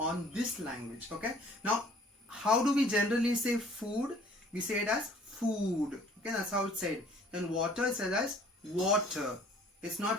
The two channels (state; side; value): normal; both; correlation 0.55